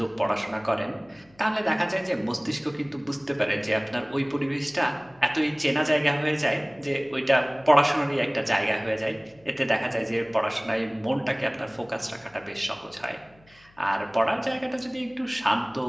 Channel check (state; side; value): noise; left; hum, 29 dB below the sound